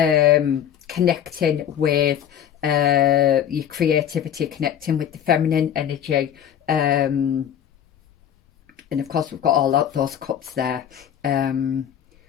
with your creativity, connecting with the feminine energy. And of course, we've got all those cups there.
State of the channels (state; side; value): quieter; right; 9.6 dB